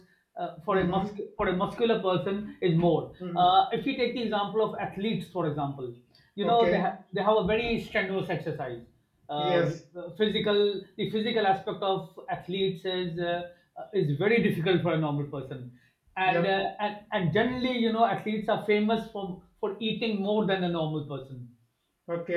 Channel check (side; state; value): both; identical; correlation 1.00